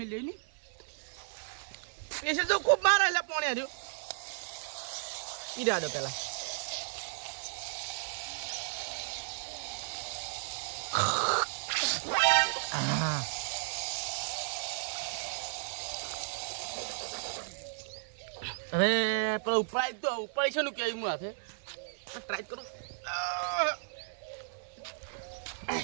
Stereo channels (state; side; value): silent; left; 55 dB below the other